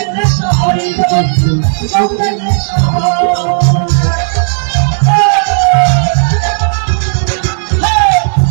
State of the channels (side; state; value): left; silent; digital silence